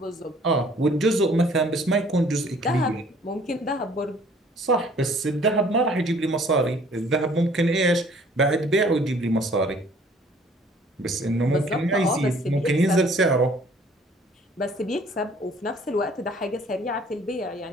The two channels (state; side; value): normal; both; correlation 0.56